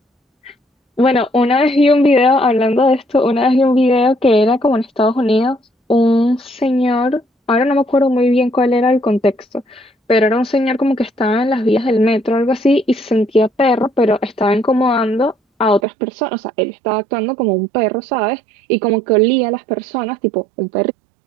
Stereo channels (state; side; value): drops out; left; at 15.8 s